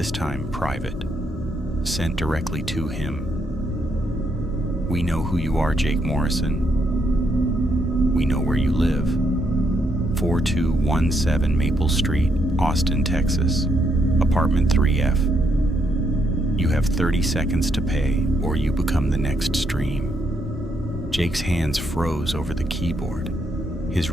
time private, sent directly to him. We know who you are, Jake Morrison. We know where you live. 4217 Maple Street, Austin, Texas, apartment 3F. You have 30 seconds to pay, or you become the next stream. Jake's hands froze over the keyboard. His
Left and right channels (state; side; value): normal; both; correlation 0.76